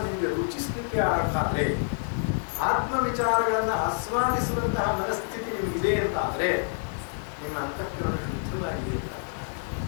ನಿಮಗೆ ರುಚಿಸ್ಲಿಕ್ಕೆ ಆದ್ರೆ, ಆತ್ಮ ವಿಚಾರಗಳನ್ನ ಆಸ್ವಾದಿಸುವಂತಹ ಮನಸ್ಥಿತಿ ನಿಮಗಿದೆ ಅಂತಾದ್ರೆ ನಿಮ್ಮ ಅಂತಃಕರಣ ಶುದ್ಧವಾಗಿದೆ ಅಂತ.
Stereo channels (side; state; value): right; silent; digital silence